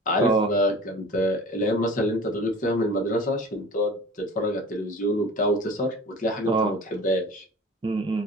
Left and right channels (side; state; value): both; normal; correlation 0.40